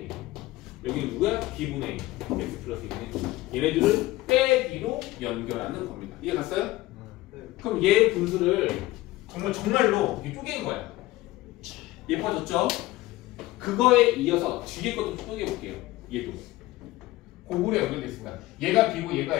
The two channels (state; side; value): quieter; right; 17.9 dB